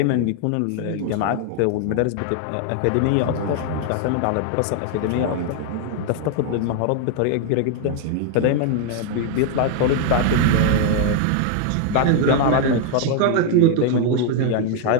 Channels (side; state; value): both; different; correlation 0.00